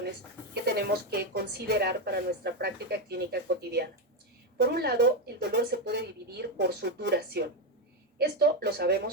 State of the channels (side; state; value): both; normal; correlation 0.07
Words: que tenemos que considerar para nuestra práctica clínica cotidiana. Por un lado, el dolor se puede dividir por su duración. Esto lo